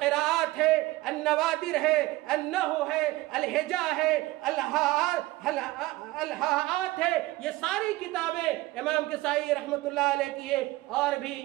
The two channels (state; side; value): quieter; left; 19.3 dB